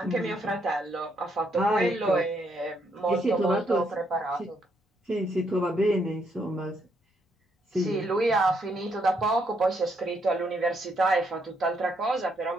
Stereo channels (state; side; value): normal; both; correlation 0.74